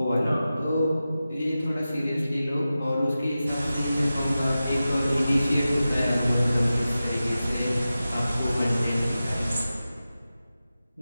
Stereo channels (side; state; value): both; inverted; correlation -0.94